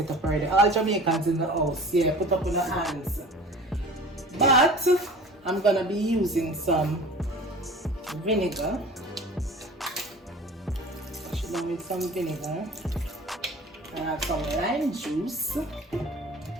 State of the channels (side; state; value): both; normal; correlation 0.41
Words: up already. All Jamaicans in the house, yeah, put up on the hands. But I'm gonna be using some vinegar. Wash it down with some vinegar. I have some lime juice. Not